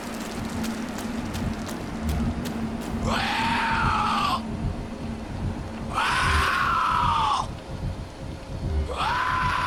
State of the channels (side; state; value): both; identical; correlation 1.00